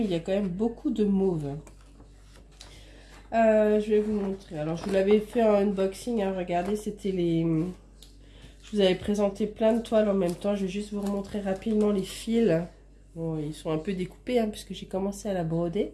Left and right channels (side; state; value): both; identical; correlation 1.00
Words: il y a quand même beaucoup de mauve. Je vais vous montrer. Alors je vous l'avais fait en unboxing, hein, regardez, c'était les... Je vous avais présenté plein de toiles en même temps. Je vais juste vous remontrer rapidement les fils. Bon, ils sont un peu découpés, hein, puisque j'ai commencé à la broder.